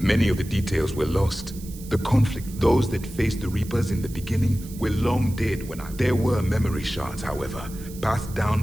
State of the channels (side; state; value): right; noise; hiss, 18 dB below the sound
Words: of the details were lost. The conflict, those that faced the Reapers in the beginning, were long dead when There were memory shards, however, passed down